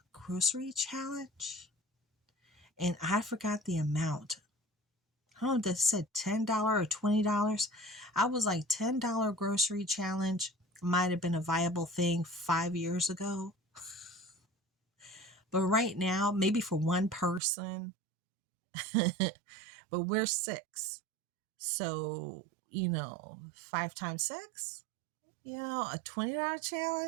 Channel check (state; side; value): drops out; left; at 17.4 s